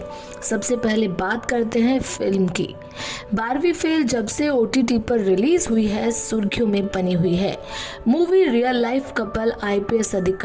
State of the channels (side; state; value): both; identical; correlation 1.00